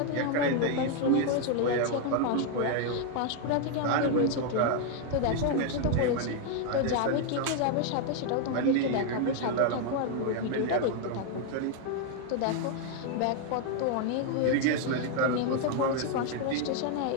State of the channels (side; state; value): both; different; correlation 0.00